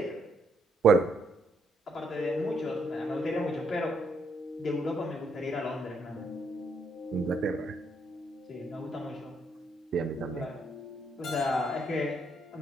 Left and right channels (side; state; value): both; normal; correlation 0.74